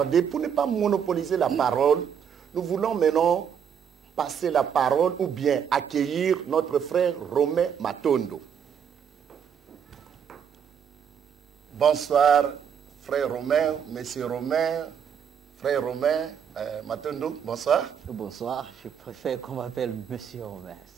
pour ne pas monopoliser la parole, nous voulons maintenant passer la parole ou bien accueillir notre frère Romain Matondo. Bonsoir, frère Romain, monsieur Romain, frère Romain Matondo, bonsoir. Bonsoir, je préfère qu'on m'appelle monsieur Romain,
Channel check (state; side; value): quieter; left; 7.8 dB